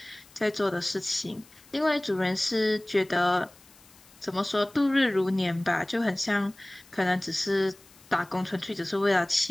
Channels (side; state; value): left; noise; hiss, 26 dB below the sound